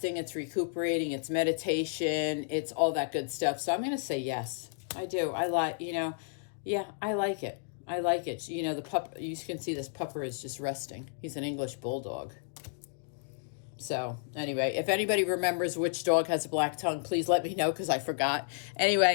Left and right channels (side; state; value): right; silent; digital silence